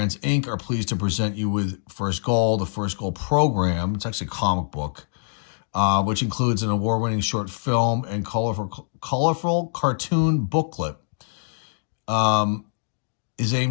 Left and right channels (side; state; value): right; silent; digital silence